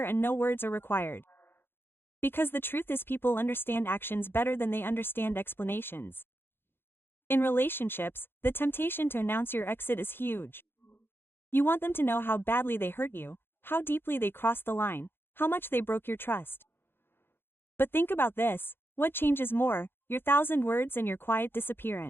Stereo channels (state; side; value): late; right; 0.10 ms